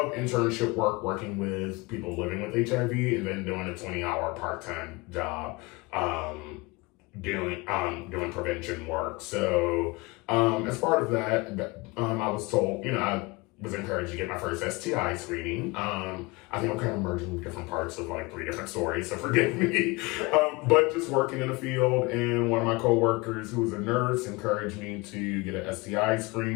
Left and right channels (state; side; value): quieter; right; 24.9 dB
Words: internship work working with people living with HIV, and then doing a 20-hour part-time job doing prevention work. So as part of that, I was told, I was encouraged to get my first STI screening. I think I'm kind of merging different parts of like 3 different stories, so forgive me. But just working in the field, and one of my coworkers who was a nurse encouraged me to get an STI